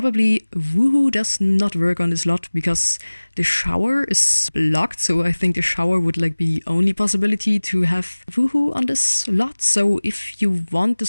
Woohoo does not work on this lot because the shower is blocked. So I think the shower would be the only possibility to have Woohoo on this lot. So if you want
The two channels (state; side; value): inverted; both; correlation -1.00